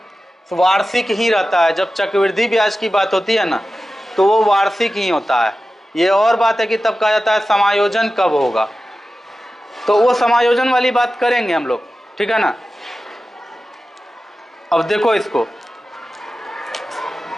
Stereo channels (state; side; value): normal; both; correlation 0.94